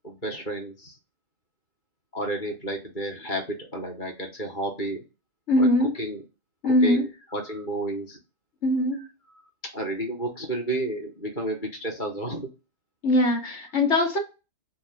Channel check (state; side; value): late; right; 2.3 ms